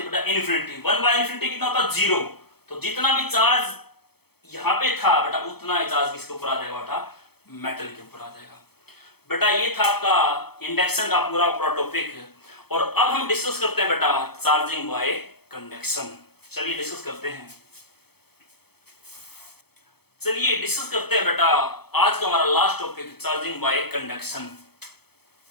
बेटा इन्फिनिटी, 1 बाई इन्फिनिटी कितना होता 0, तो जितना भी चार्ज यहां पे था बेटा उतना ही चार्ज किसके ऊपर आ जाएगा बेटा मेटल के ऊपर आ जाएगा। बेटा ये था आपका इंडक्शन का पूरा टॉपिक, और अब हम डिस्कस करते हैं बेटा चार्जिंग बाय कंडक्शन। चलिए डिस्कस करते हैं, चलिए डिस्कस करते हैं बेटा आज का हमारा last topic charging by conduction.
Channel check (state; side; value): late; right; 0.97 ms